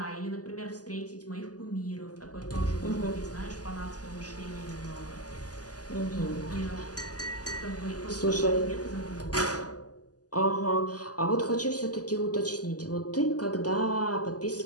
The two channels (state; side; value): late; right; 0.68 ms